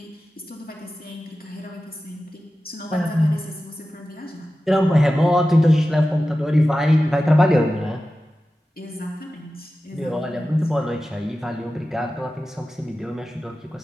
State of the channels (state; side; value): normal; both; correlation 0.94